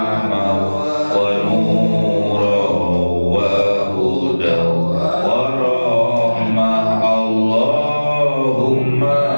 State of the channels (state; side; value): inverted; both; correlation -1.00